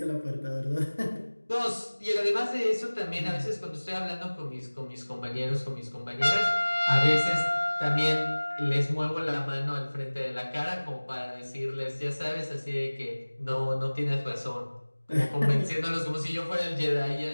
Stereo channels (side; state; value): both; inverted; correlation -1.00